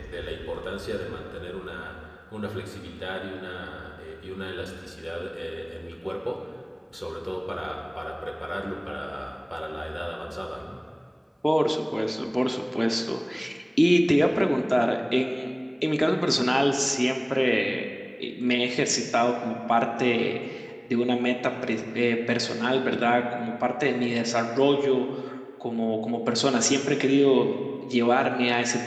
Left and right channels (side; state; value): both; identical; correlation 1.00